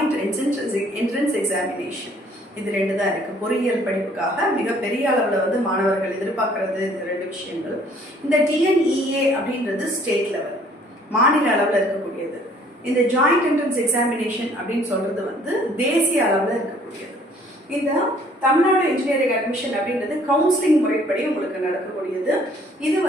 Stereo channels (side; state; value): both; normal; correlation 0.59